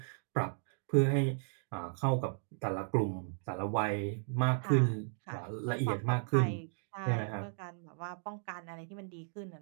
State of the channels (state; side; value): silent; left; digital silence